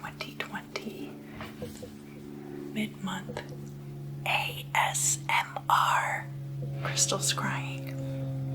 mid-month ASMR crystal scrying.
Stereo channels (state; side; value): identical; both; correlation 1.00